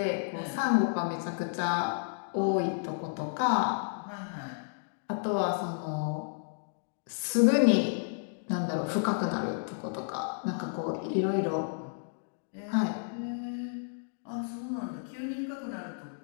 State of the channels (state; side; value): silent; right; digital silence